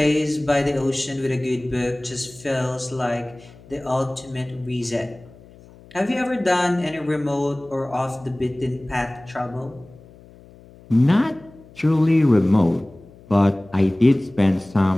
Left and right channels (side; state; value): left; noise; hum, 23 dB below the sound